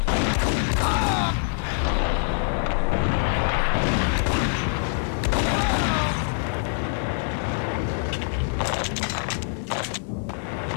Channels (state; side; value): silent; right; digital silence